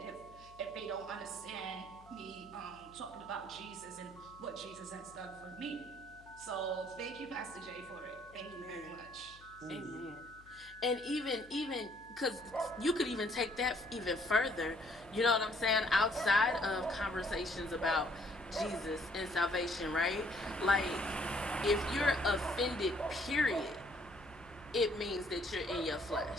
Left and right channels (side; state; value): left; noise; hum, 24 dB below the sound